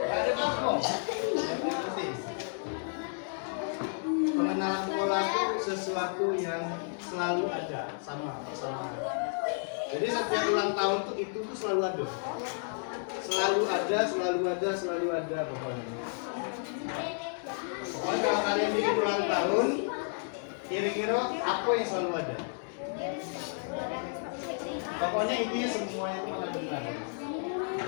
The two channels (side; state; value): right; silent; 57 dB below the other